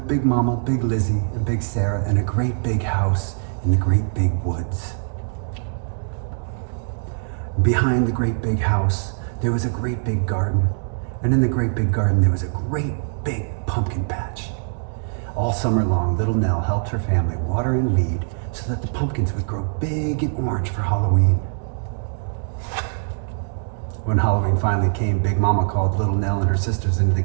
Big Mama, Big Lizzie, and Big Sarah in a great big house in the great big woods. Behind the great big house, there was a great big garden. And in the great big garden, there was a great big pumpkin patch. All summer long, Little Nell helped her family water and weed so that the pumpkins would grow big and orange for Halloween. When Halloween finally came, Big Mama called Little Nell and her sisters into the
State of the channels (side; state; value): left; silent; digital silence